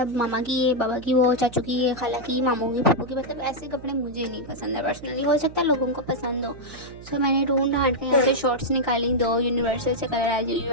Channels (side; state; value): right; noise; hum, 17 dB below the sound